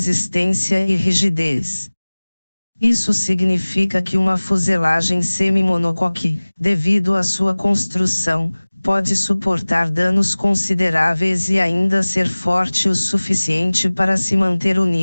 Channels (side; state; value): both; inverted; correlation -1.00